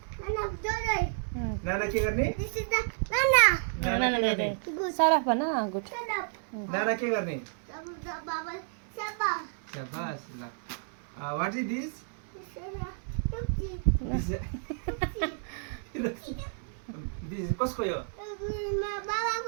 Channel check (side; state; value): left; silent; digital silence